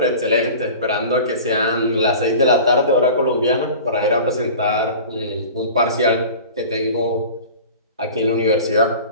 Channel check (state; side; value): inverted; both; correlation -0.38